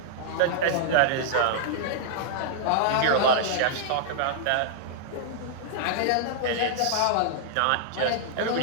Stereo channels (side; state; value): both; different; correlation -0.01